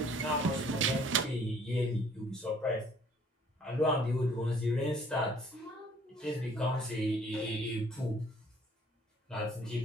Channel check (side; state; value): both; normal; correlation 0.58